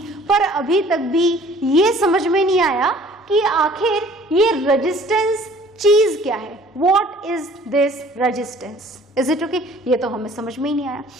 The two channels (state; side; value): normal; both; correlation 0.53